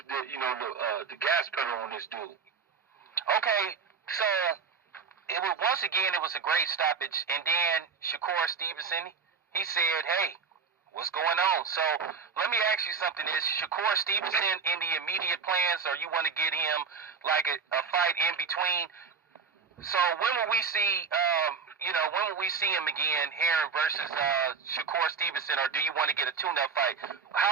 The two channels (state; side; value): quieter; left; 5.8 dB